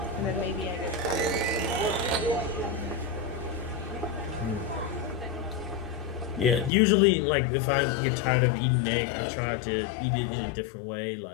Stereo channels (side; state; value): right; drops out; at 6.7 s